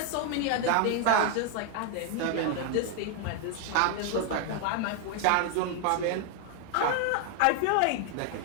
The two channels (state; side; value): different; both; correlation 0.00